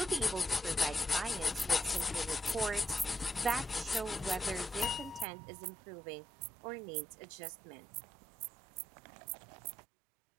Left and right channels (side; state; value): left; drops out; at 5.2 s